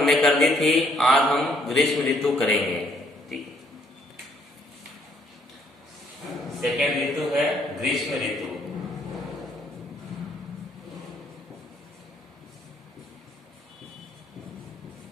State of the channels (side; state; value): both; normal; correlation 0.66